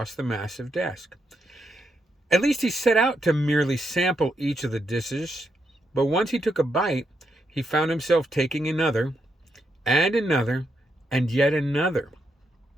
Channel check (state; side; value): normal; both; correlation 0.81